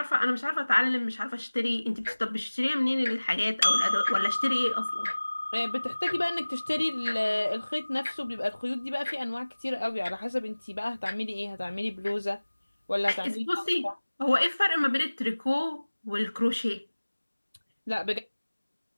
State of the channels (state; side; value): inverted; both; correlation -1.00